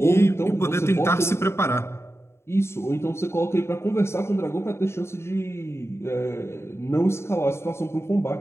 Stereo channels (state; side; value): late; right; 0.13 ms